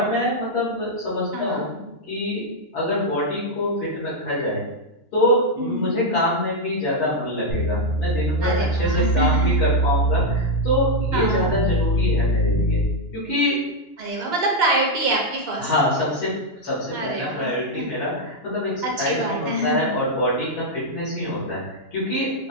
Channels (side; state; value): right; late; 2.9 ms